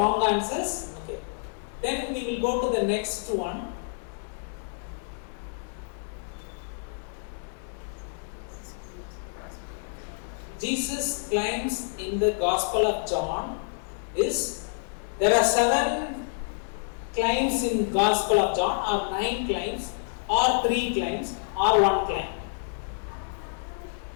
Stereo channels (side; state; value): right; silent; digital silence